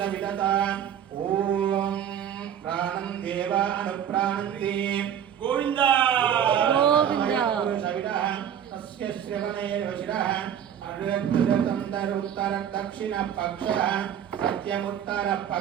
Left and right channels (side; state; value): left; quieter; 9.4 dB